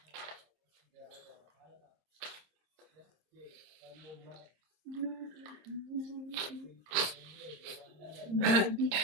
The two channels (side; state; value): left; late; 26 ms